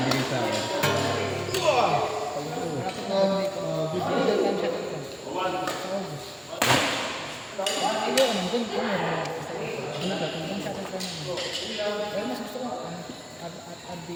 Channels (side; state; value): both; identical; correlation 1.00